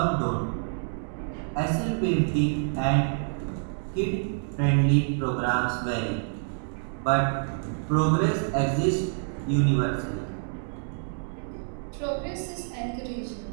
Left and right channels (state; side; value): silent; left; digital silence